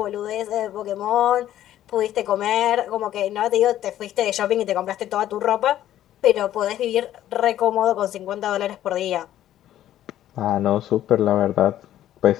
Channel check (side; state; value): right; quieter; 12.4 dB